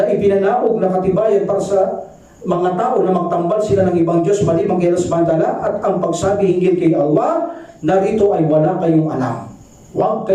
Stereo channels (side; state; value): both; identical; correlation 1.00